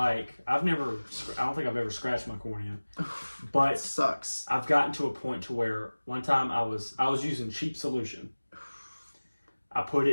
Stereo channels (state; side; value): inverted; both; correlation -1.00